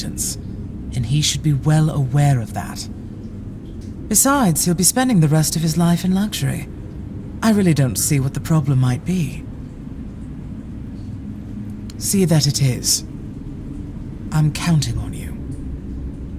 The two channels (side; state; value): both; identical; correlation 1.00